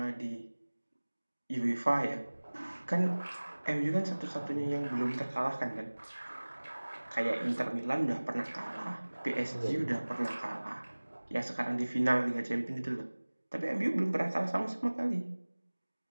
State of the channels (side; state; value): both; inverted; correlation -1.00